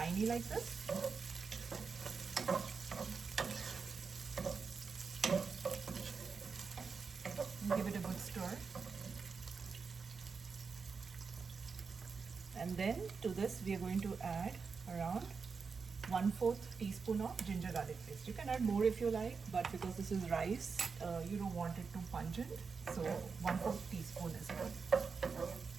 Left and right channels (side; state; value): left; quieter; 5.2 dB